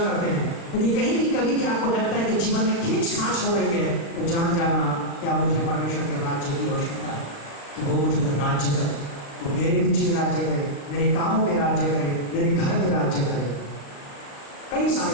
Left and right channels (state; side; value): late; right; 36 ms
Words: हैं, यदि कहीं भी कभी भी आपको लगता है कि जीवन में खींच खांच हो रही है, तो जान जाना क्या मुझे परमेश्वर के राज्य की आवश्यकता है कि वो मुझे राज्य करे, वो मेरे बीच में राज्य करे, मेरे कामों में राज्य करे, मेरे घर में राज्य करे। कई